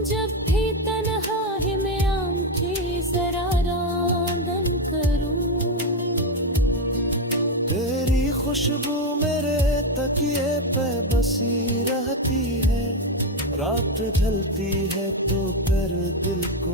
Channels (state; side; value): normal; both; correlation 0.09